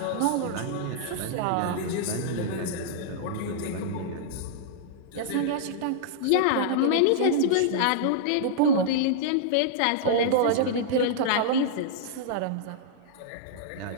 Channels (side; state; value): both; different; correlation -0.02